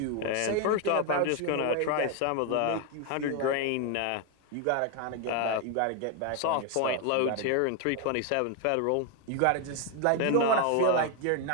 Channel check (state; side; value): different; both; correlation 0.01